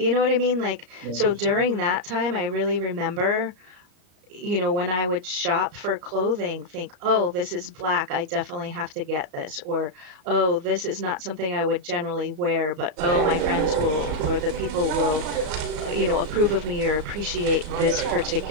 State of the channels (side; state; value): left; late; 34 ms